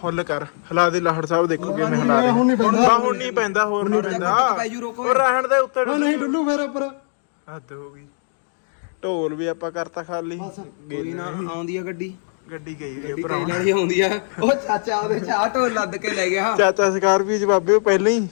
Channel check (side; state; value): right; silent; digital silence